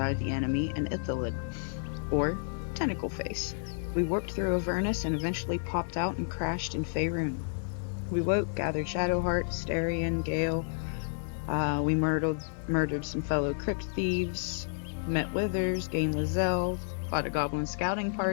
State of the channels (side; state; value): right; silent; digital silence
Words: the enemy and Ithalid, or Tentacle Face. We warped through Avernus and eventually popped out and crashed in Faerun. We woke, gathered Shadowheart, Starion, Gale. We murdered some fellow crypt thieves, met Withers, gained Lae'zel, fought a goblin scouting